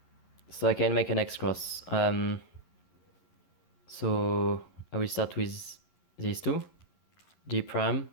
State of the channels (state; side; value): late; right; 11 ms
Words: So I can make an X cross. So I will start with these 2, D prime,